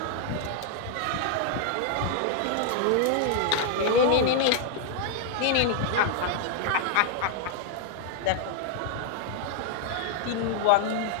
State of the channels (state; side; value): different; both; correlation 0.00